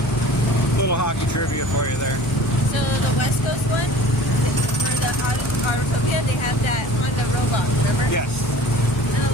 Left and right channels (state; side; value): normal; both; correlation 0.44